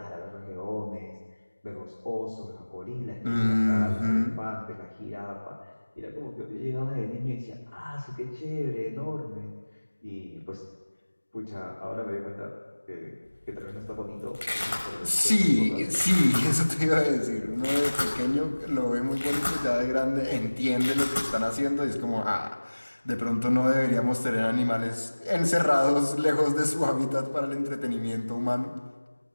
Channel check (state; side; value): inverted; both; correlation -1.00